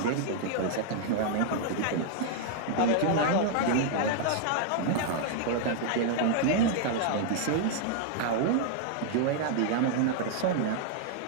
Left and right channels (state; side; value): different; both; correlation -0.01